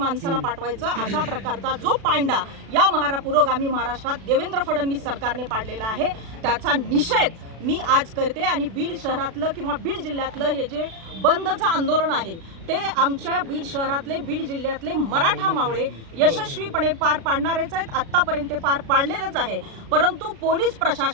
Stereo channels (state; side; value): late; left; 36 ms